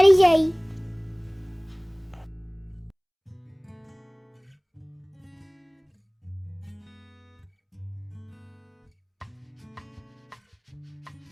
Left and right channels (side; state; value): both; identical; correlation 1.00